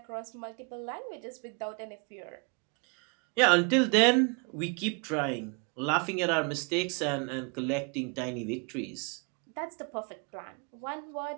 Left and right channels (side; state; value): left; quieter; 34.3 dB